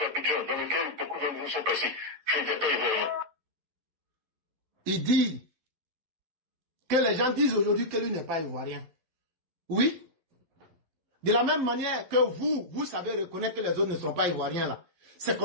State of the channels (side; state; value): left; late; 12 ms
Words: dans lequel beaucoup d'entre vous sont passés, je n'étais pas ivoirien. Il dit que les gens disent aujourd'hui que lui n'est pas ivoirien. Oui. De la même manière que vous savez reconnaître que les autres ne sont pas ivoiriens là. C'est